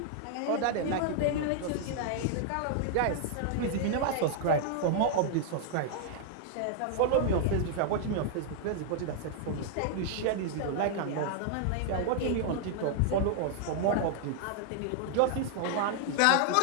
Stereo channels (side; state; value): both; different; correlation -0.01